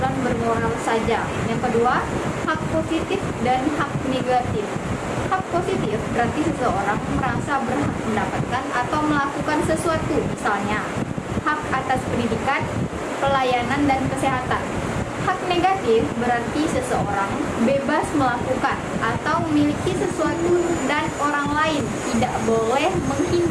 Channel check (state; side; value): identical; both; correlation 1.00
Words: bermoral saja. Yang kedua, hak positif dan hak negatif. Hak positif berarti seseorang merasa berhak mendapatkan atau melakukan sesuatu, misalnya hak atas pendidikan, pelayanan, dan kesehatan. Hak negatif berarti seseorang bebas melakukan atau memiliki sesuatu dan orang lain tidak boleh